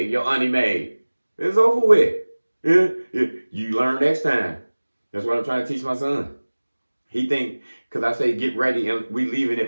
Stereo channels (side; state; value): both; inverted; correlation -1.00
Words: your auntie made. It's over with. Yeah? You learn next time. That's what I'm trying to teach my son. He think, because I say get ready and we leaving